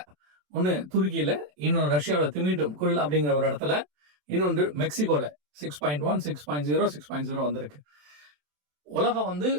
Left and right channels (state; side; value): late; left; 27 ms